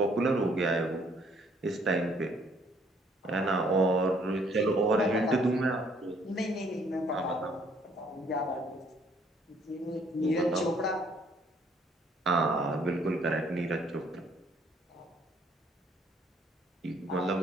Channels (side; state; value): both; normal; correlation 0.64